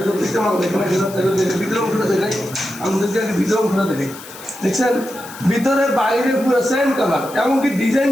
প্রত্যেকটা মাল দেখবেন, ভিতরে অংশটা দেখাই আমাদেরকে, আগে ভিতরে অংশটা দেখাই। দেখছেন ভিতরে বাইরে পুরো সেম কালার, এমনকি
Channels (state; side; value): noise; left; hiss, 16 dB below the sound